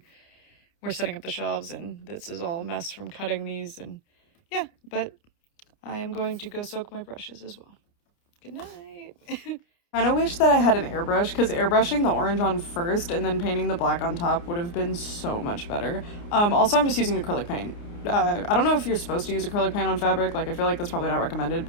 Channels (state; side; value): late; right; 29 ms